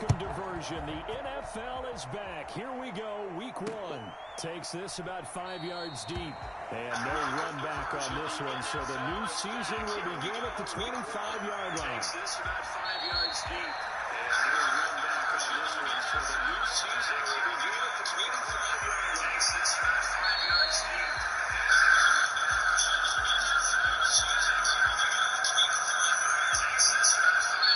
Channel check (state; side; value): identical; both; correlation 1.00